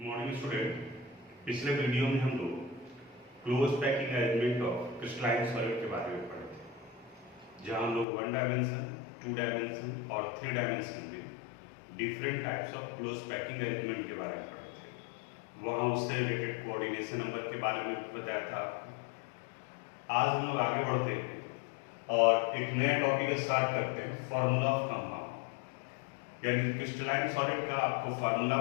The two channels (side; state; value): right; drops out; at 8.1 s